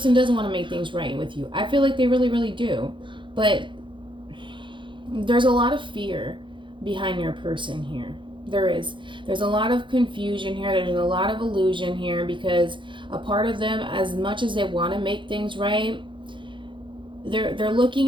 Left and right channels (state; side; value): late; left; 0.23 ms